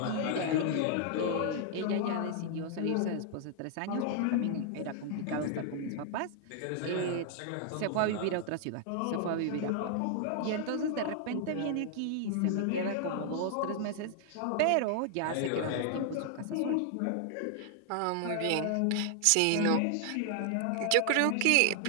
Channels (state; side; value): different; both; correlation 0.00